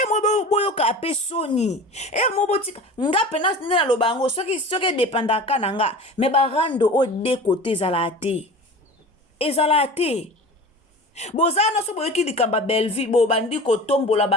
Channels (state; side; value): normal; both; correlation 0.36